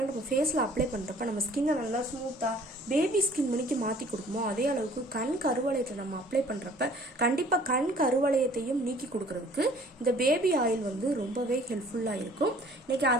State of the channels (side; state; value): both; normal; correlation 0.54